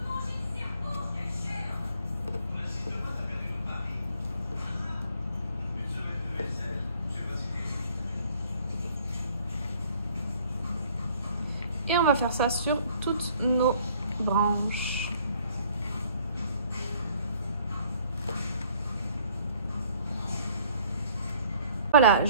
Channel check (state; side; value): inverted; both; correlation -0.59